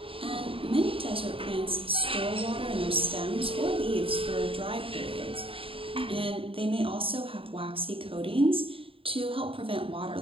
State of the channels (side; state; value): left; late; 0.26 ms